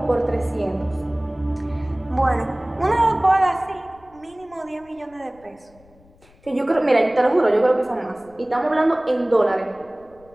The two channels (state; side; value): noise; left; rumble, 28 dB below the sound